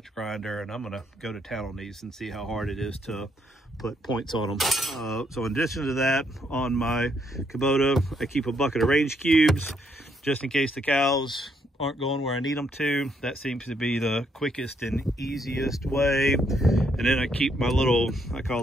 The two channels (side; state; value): both; normal; correlation 0.73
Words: grinder, and I'm going to go to town on these and see how hard it is to put points on them. So in addition to that, on my Kubota, I keep a bucket of range cubes just in case the cows aren't going where I need them to. That seems to be the quickest and easiest way. And then I keep my little, I call